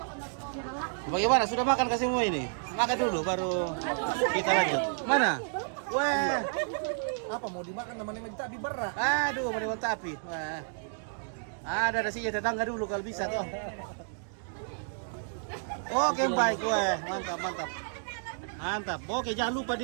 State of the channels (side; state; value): left; silent; digital silence